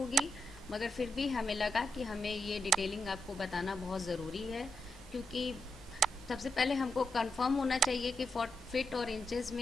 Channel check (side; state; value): both; normal; correlation 0.84